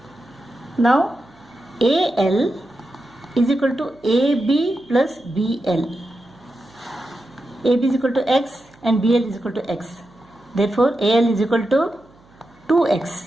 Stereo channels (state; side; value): noise; right; hum, 29 dB below the sound